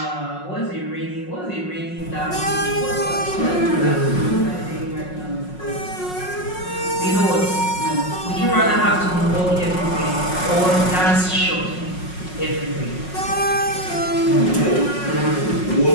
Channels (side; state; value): right; late; 5.5 ms